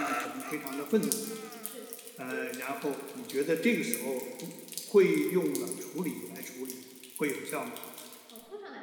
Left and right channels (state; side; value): identical; both; correlation 1.00